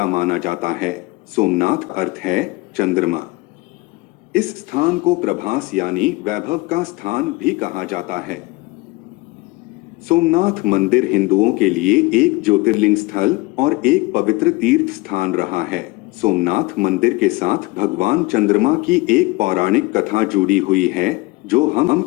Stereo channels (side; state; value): right; quieter; 22.8 dB